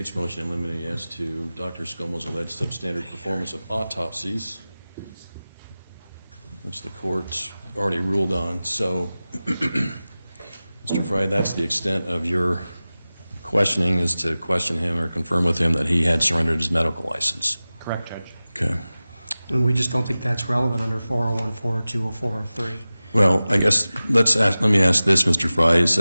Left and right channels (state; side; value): inverted; both; correlation -0.97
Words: motion in limine as to Dr. Scoll's alleged substandard performance of autopsies, which the court already ruled on. So, Mr. Fry, that's the extent of your questioning, is to question him or confirm with him that he had surrendered his medical license. Correct, Judge. Okay. And we just don't think that's relevant under 401, 402, or 403. Well, I guess let me ask this, Mr. Fry. Is